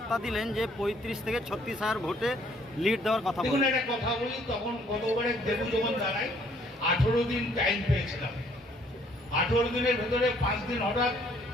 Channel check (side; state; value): both; normal; correlation 0.63